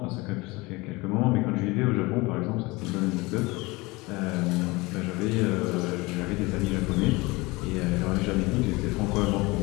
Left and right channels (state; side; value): quieter; right; 23.4 dB